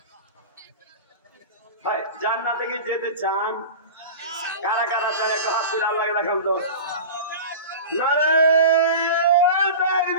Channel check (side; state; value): both; inverted; correlation -0.32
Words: ভাই, জান্নাতে কি যেতে চান? কারা কারা চান একটু হাত তুলে আল্লাহকে দেখান তো। নারে